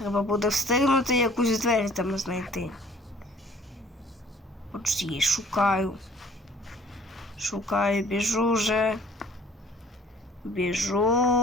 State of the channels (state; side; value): normal; both; correlation 0.54